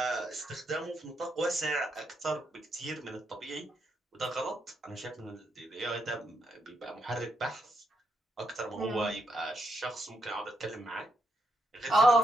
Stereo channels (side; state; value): both; normal; correlation 0.80